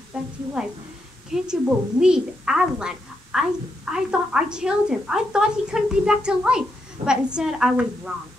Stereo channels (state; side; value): normal; both; correlation 0.82